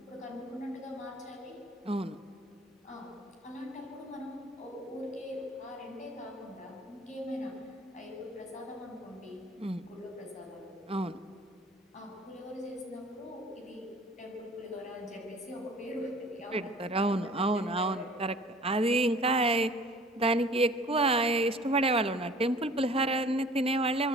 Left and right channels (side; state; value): both; normal; correlation 0.49